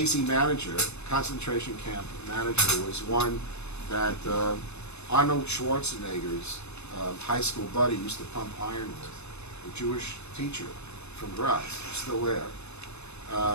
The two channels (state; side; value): late; right; 0.81 ms